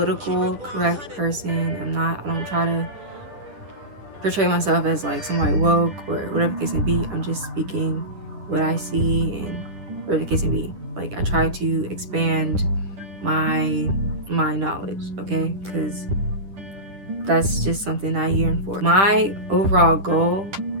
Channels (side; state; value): left; late; 10 ms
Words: correct person. I don't try to portray myself as like somebody woke or whatever the case may be. I'm just speaking what I see and whatever the case may be. Like, I try to expand my knowledge, okay? Because that's just something I yearn for. My overall goal